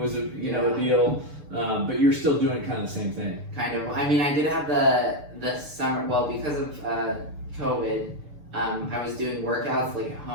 a deal, but you're still doing kind of the same thing. Kind of. I mean, I did have the summer. Well, because of COVID, I was doing workouts like at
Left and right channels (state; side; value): late; left; 6.7 ms